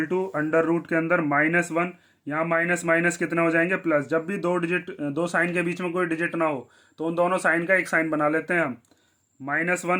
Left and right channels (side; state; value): both; identical; correlation 1.00